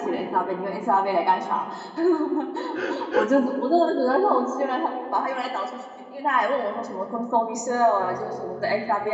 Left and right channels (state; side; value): identical; both; correlation 1.00